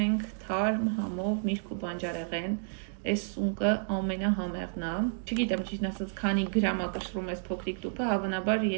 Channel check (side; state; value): left; silent; digital silence